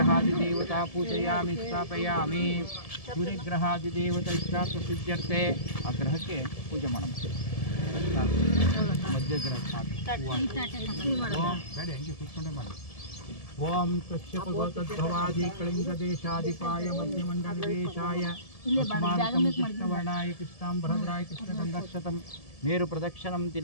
पूजयामि स्थापयामि सूर्यग्रहादिदेवता इष्टार्थसिद्ध्यर्थे आ ग्रहಕ್ಕೆ पूजे ಮಾಡಬೇಕು मध्यग्रह ಬೇಡ ಹೆಂಗೆ ಕೂತ್ಕೊಂಡೇ ಮಾಡಿ ओम कश्यप गोतद्भवादि कलिंगदेशाधिपाय मध्यमंडलवेशाय अस्माकं कृष्णवर्णाय कृष्णांबरद्राय कृष्णगन्धक्षतं मेरुप्रदक्षिणं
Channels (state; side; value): late; right; 1.7 ms